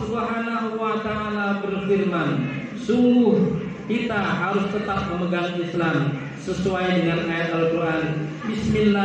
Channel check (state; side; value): identical; both; correlation 1.00